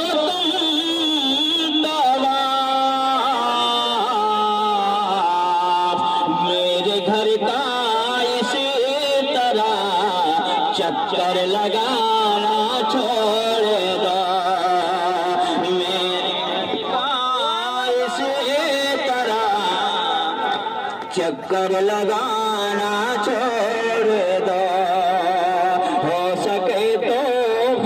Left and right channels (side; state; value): both; identical; correlation 1.00